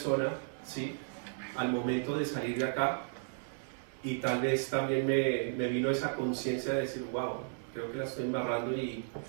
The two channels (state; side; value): silent; left; 55 dB below the other